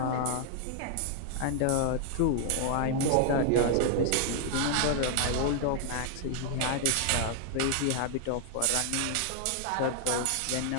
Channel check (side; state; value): both; different; correlation 0.00